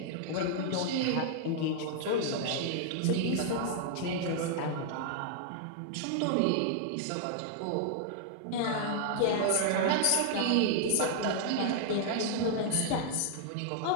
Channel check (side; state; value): both; different; correlation -0.01